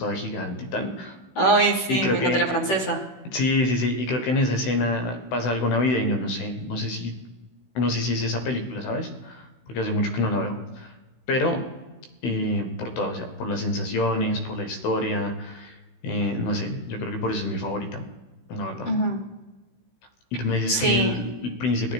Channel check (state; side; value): late; right; 16 ms